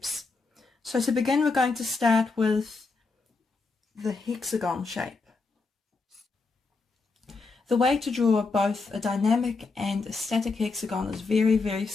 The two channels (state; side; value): quieter; right; 4.0 dB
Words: So to begin, we're going to start with the hexagon shape. The way to draw both a dynamic and a static hexagon is very